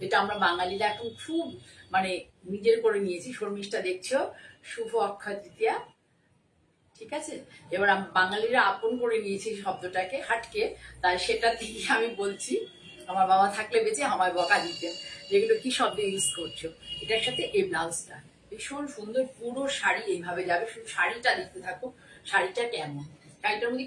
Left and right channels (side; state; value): both; identical; correlation 1.00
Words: যেটা আমরা বাঙালিরা এখন খুব মানে নিজের করে নিয়েছি। শর্মিষ্ঠা দেখছো, শুভ অক্ষয় তৃতীয়া। ঠিক আছে, এবার বাঙালিরা আপন করে নিয়েছি শব্দটাকে হাটকে, তাই সেটা থেকে আমি বলছি। আমার বাবা থাকলে বেঁচে আমায় বকা দিতেন, যেগুলো কি শব্দ ইউজ করছো। এটার সাথে এই ব্লাউজটা ভীষণ সুন্দর, পুরো শাড়ি এইভাবে যাবে। শুধু শাড়িটা দেখতে থাকো, শাড়িটা কেমন। শাড়িটার মধ্যে